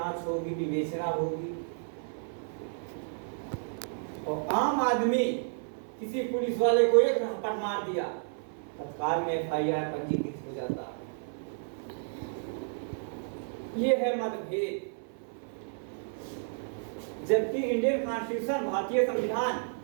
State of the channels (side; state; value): left; silent; 57 dB below the other